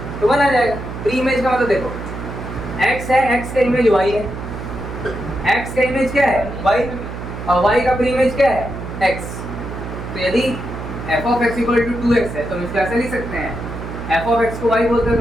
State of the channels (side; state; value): right; noise; hum, 8 dB below the sound